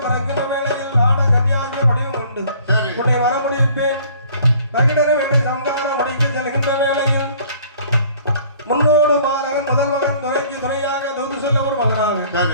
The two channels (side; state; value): both; inverted; correlation -0.55